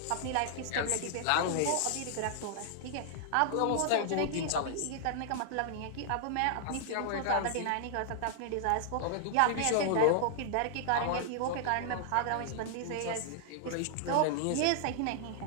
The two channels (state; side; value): different; both; correlation -0.01